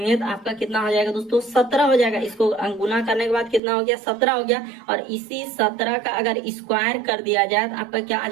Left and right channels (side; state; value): left; drops out; at 3.6 s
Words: तो आपका कितना हो जाएगा दोस्तों, 17 हो जाएगा। इसको गुना करने के बाद कितना हो गया, 17 हो गया। और इसी 17 का अगर स्क्वायर कर दिया जाए तो आपका क्या आ